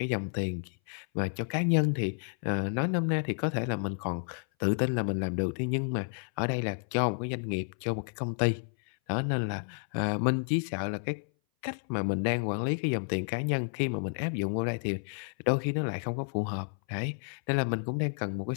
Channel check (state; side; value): silent; right; 57 dB below the other